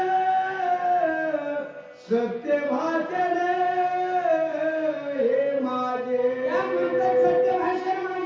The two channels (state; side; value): identical; both; correlation 1.00